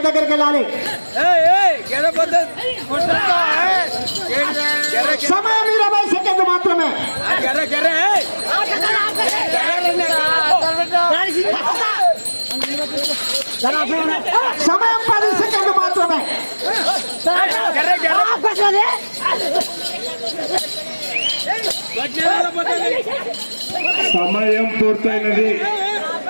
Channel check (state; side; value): inverted; both; correlation -1.00